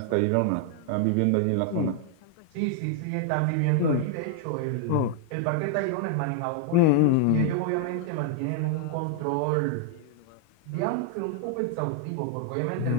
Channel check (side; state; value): both; different; correlation 0.00